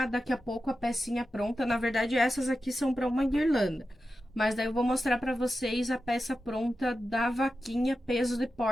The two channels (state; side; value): normal; both; correlation 0.91